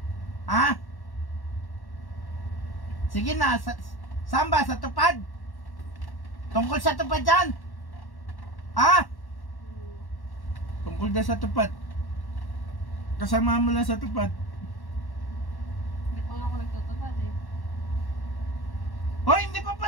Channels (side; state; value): right; late; 1.1 ms